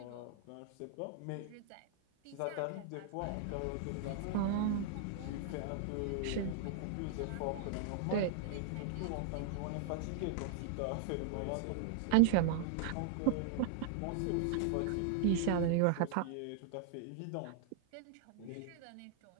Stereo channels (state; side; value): different; both; correlation -0.01